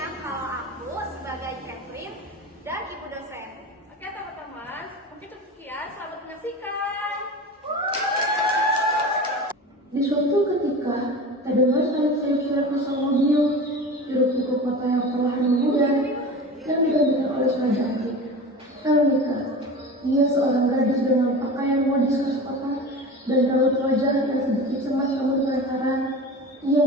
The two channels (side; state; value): both; normal; correlation 0.32